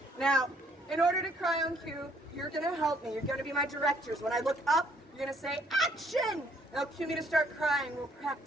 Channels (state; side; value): normal; both; correlation 0.65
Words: Now, in order to cry on cue, you're going to help me. You're going to be my directors. When I look up, you're going to say, action! That'll cue me to start crying. We'll